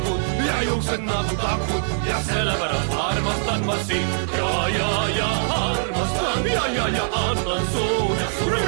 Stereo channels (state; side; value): silent; left; digital silence